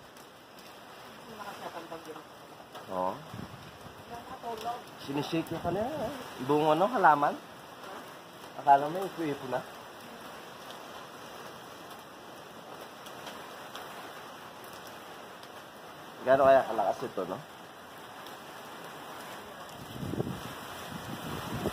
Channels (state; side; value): identical; both; correlation 1.00